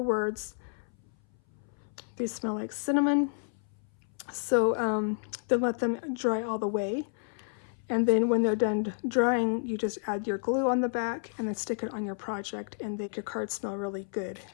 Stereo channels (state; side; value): silent; right; 57 dB below the other